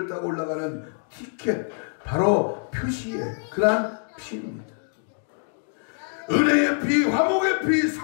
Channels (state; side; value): silent; right; 62 dB below the other